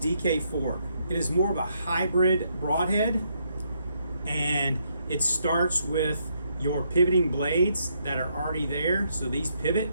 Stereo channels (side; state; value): both; inverted; correlation -0.75